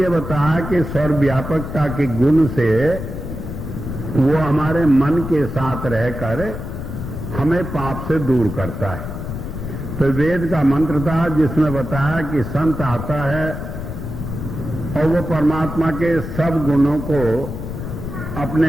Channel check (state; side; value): noise; left; rumble, 7 dB below the sound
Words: बताया कि सर्वव्यापकता के गुण से वो हमारे मन के साथ रहकर हमें पाप से दूर करता है। तो वेद का मंत्र था जिसमें बताया कि संत आता है और वो परमात्मा के सब गुणों को